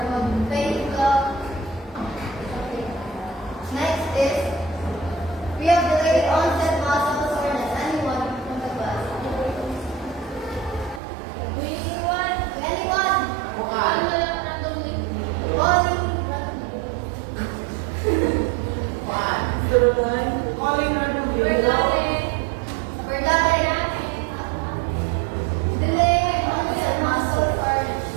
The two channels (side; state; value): left; drops out; at 11.0 s